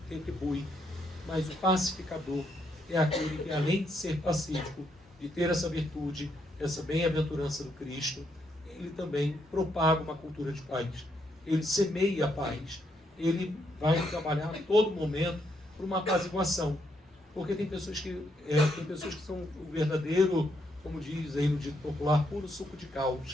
retribui, mas o pacificador é aquele que, além de ser pacífico, de ter essa virtude, essa bem-aventurança do Cristo, ele também propaga uma cultura de paz. Ele semeia a paz. Ele vai trabalhar a todo momento por uma apaziguação. Porque tem pessoas que são o verdadeiro, como diz aí no dito popular, puro suco de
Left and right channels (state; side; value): normal; both; correlation 0.76